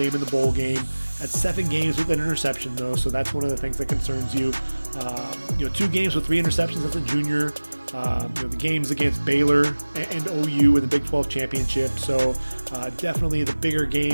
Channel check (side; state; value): both; inverted; correlation -1.00